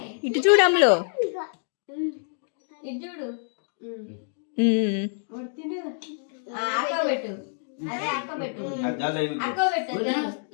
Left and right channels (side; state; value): right; silent; digital silence